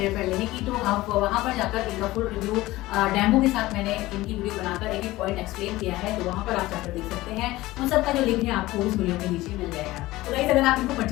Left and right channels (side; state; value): right; quieter; 18.1 dB